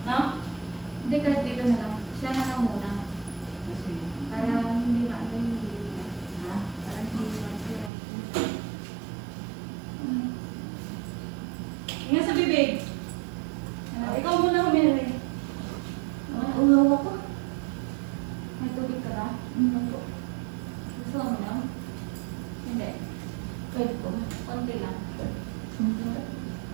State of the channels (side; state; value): left; drops out; at 7.9 s